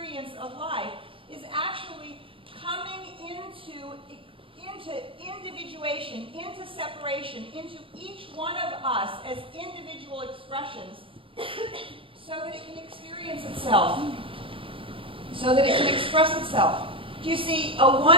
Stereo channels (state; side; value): late; left; 0.26 ms